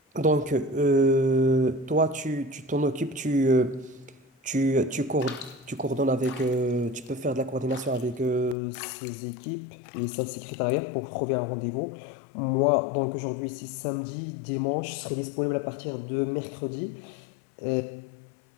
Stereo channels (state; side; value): drops out; right; at 8.6 s